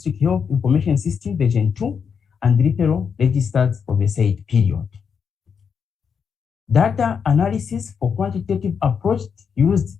Health Information System version 2 and referral registers for the said period. Data analysis for quantitative approach used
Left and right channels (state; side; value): quieter; right; 6.5 dB